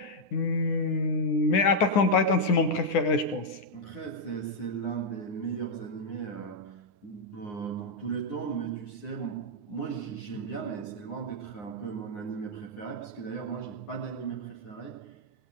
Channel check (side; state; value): right; late; 9.7 ms